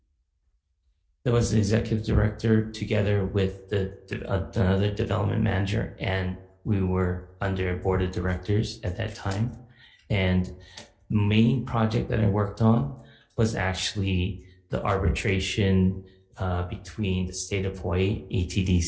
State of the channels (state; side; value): identical; both; correlation 1.00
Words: There was the executive director together with another development manager, and we were under board of directors at that time. And main project that I worked on was actually the arbitration between the state of Hawaii,